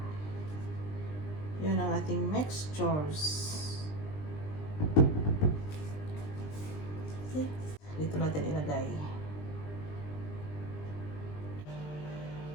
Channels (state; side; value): late; right; 20 ms